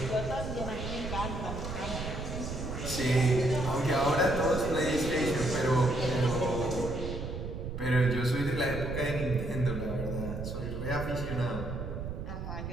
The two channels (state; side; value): noise; right; rumble, 6 dB below the sound